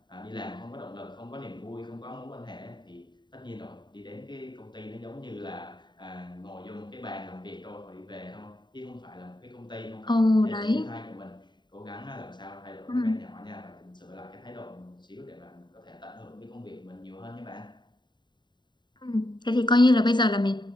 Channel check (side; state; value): right; late; 0.22 ms